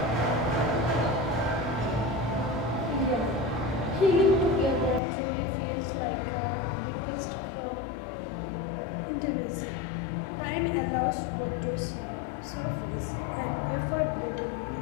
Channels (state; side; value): drops out; right; at 5.0 s